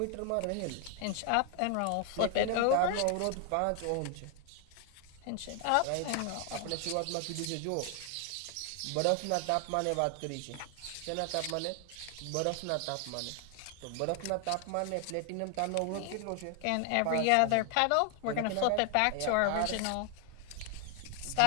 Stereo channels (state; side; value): different; both; correlation 0.00